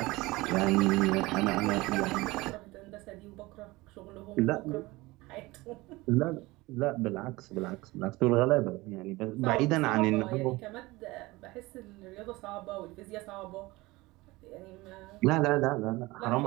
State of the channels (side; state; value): left; quieter; 21.0 dB